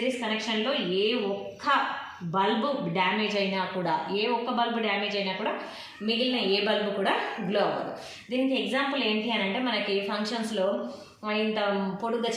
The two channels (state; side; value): identical; both; correlation 1.00